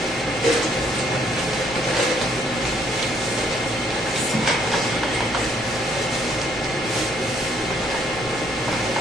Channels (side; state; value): both; normal; correlation 0.66